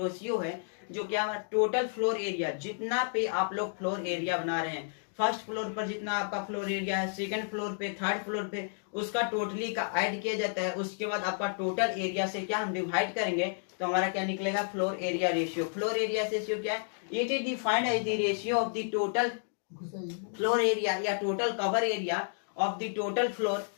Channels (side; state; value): right; silent; digital silence